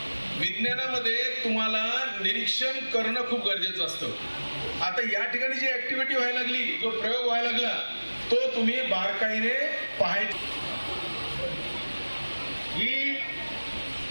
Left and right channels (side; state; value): both; inverted; correlation -1.00